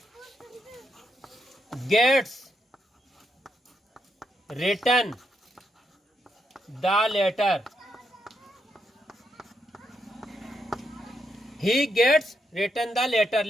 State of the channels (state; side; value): normal; both; correlation 0.80